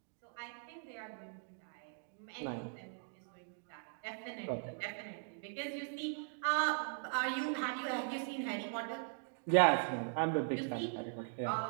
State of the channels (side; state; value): left; silent; digital silence